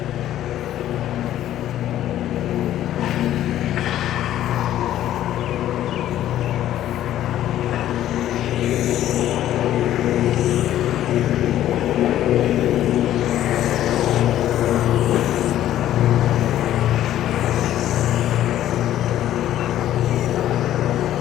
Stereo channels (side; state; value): right; quieter; 12.5 dB